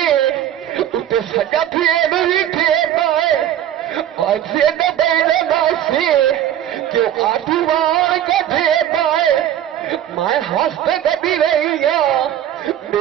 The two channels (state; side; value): quieter; left; 11.2 dB